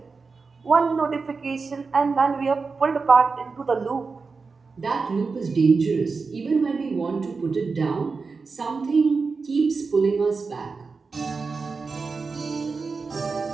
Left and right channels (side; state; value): left; quieter; 4.5 dB